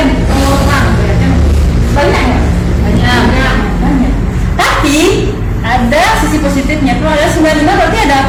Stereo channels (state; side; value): identical; both; correlation 1.00